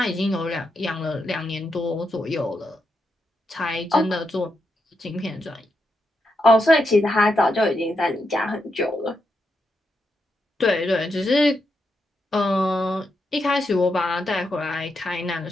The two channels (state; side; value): normal; both; correlation 0.83